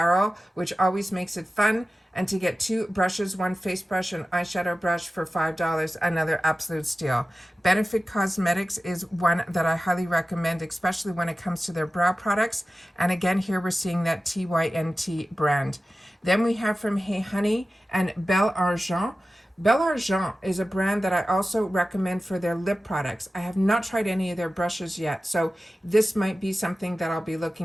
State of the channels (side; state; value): both; normal; correlation 0.95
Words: which always makes it fun. And to get two brushes, one face brush and eyeshadow brush for $5, another absolute steal. Benefit Cosmetics is one that I highly recommend, especially when it comes to their brow products. And again, here we're seeing that TYNT brand. Then we have from Hey Honey and Belle Argent. Belle Argent is a brand that I also recommend for their lip products. I have not tried any of their brushes yet, so this might be something that I'll be